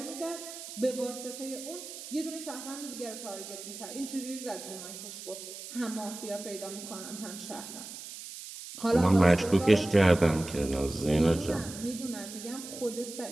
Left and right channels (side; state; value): right; noise; hiss, 11 dB below the sound